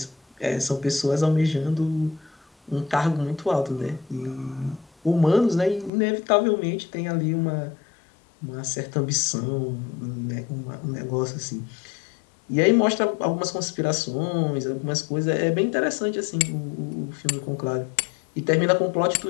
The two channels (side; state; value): right; drops out; at 5.9 s